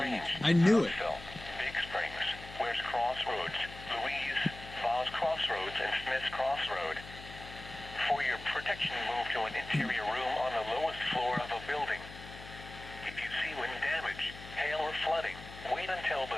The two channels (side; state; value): left; noise; hum, 14 dB below the sound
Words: I knew it. Brownsville, Big Springs, West Crossroads, Louise, Falls Crossroads, and Smith's Crossroad. For your protection, move to an interior room on the lowest floor of a building. If you see wind damage, hail, or flooding, wait until the